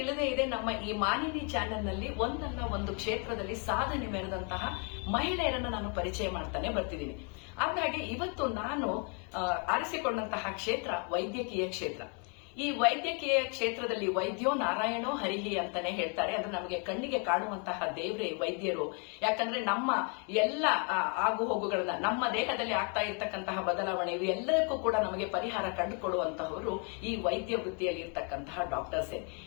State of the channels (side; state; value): right; quieter; 37.4 dB